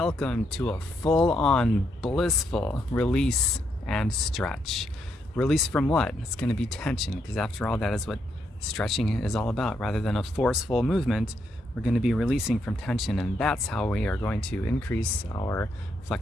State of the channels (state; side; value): normal; both; correlation 0.78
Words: to a full-on blissful release and stretch. Release from what? It's going to be tension, because after all, that is what stretching is all about. Rather than a forceful movement, we're going to be releasing from tension, and that's how we are going to increase our